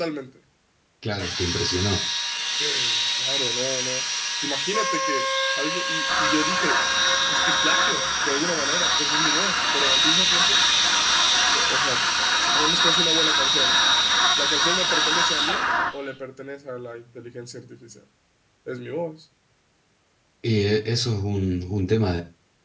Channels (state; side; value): identical; both; correlation 1.00